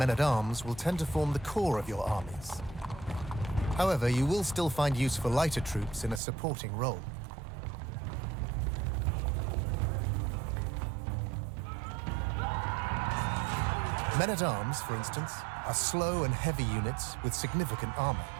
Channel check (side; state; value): left; drops out; at 6.2 s